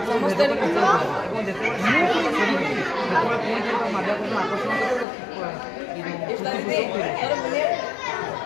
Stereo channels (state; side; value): drops out; right; at 5.1 s